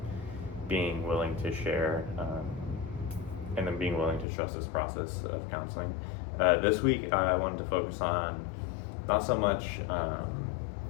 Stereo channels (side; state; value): right; drops out; at 4.2 s